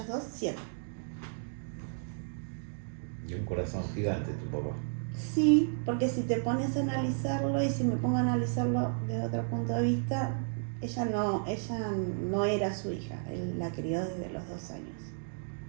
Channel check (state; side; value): silent; left; digital silence